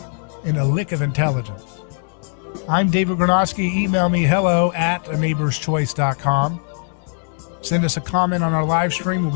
and a lick of intelligence. I'm David Gronowski. Email me hello@aneighborschoice.com. Send us a comment on our live stream. We'll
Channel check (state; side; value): silent; right; digital silence